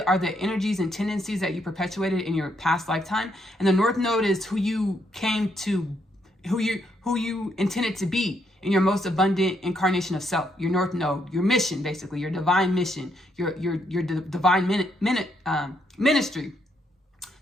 are the energies and tendencies that you perpetuated in your past lifetime. And the north node is who you came to, who you intended to be in your most abundant incarnation of self. Your north node, your mission, basically, your divine mission, your divine ministry.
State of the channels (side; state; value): both; normal; correlation 0.75